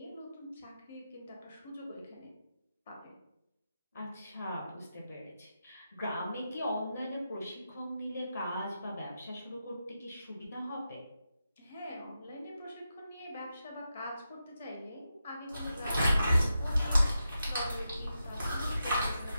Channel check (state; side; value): inverted; both; correlation -0.88